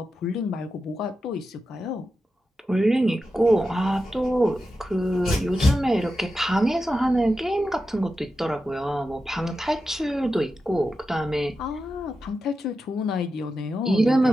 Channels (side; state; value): both; normal; correlation 0.90